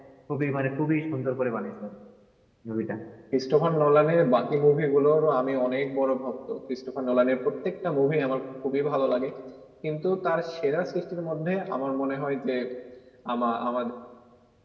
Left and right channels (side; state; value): both; identical; correlation 1.00